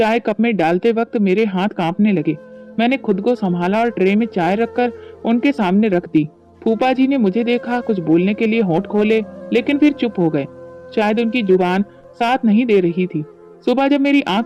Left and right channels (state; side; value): identical; both; correlation 1.00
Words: कप में डालते वक्त मेरे हाथ कांपने लगे। मैंने खुद को संभाला और ट्रे में चाय रखकर उनके सामने रख दी। फूफा जी ने मुझे देखा, कुछ बोलने के लिए होंठ खोले, लेकिन फिर चुप हो गए। शायद उनकी जुबान साथ नहीं दे रही थी। सुबह जब मेरी आंख